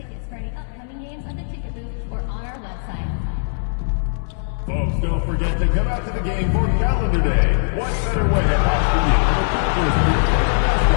Folks, don't forget to come out to the game for Calendar Day. What better way to watch the game than the Pacers for your favorite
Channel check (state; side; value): silent; right; 65 dB below the other